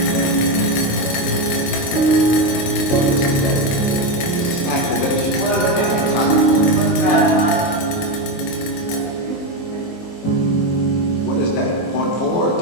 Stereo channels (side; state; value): right; late; 23 ms